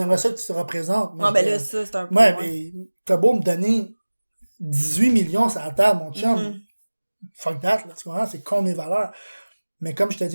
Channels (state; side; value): inverted; both; correlation -1.00